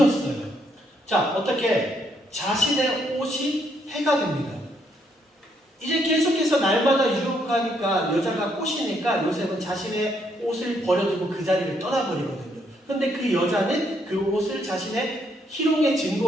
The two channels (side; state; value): both; normal; correlation 0.73